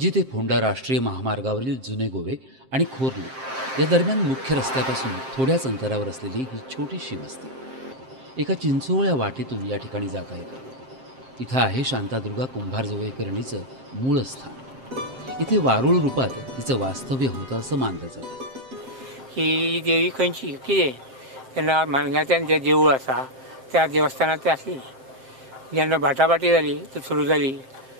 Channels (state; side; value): late; left; 7.6 ms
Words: ते फोंडा राष्ट्रीय महामार्गावरील जुने गोवे आणि खोर्ली या दरम्यान मुख्य रस्त्यापासून थोड्याच अंतरावर असलेली ही छोटीशी वस्ती एका चिंचोळ्या वाटेतून या ठिकाणी जाता येते। इथं आहे शांतादुर्गा कुंभारजुवेकरणीचं मूळ स्थान। इथे वारुळ रूपात तिचं वास्तव्य होतं असं मानलं जातं। ही देवी खंयची कितें तेन्ना मानगांतल्यान जें देवूळ आसा त्या देवस्थानांत ते आसली। जेन्ना बाटाबाटी जाली तर सुरू जाली